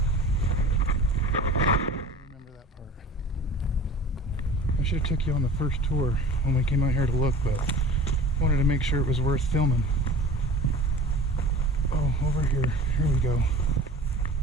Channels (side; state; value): both; normal; correlation 0.41